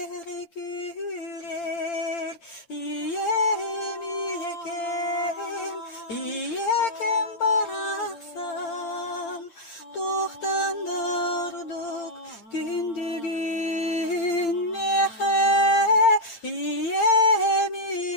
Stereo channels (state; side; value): late; right; 8.8 ms